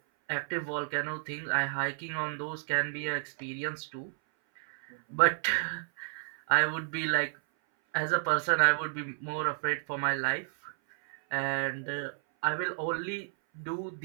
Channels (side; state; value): left; silent; 57 dB below the other